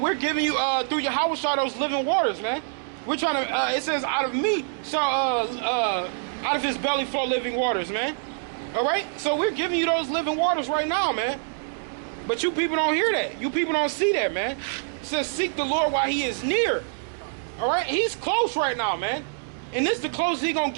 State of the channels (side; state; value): left; silent; digital silence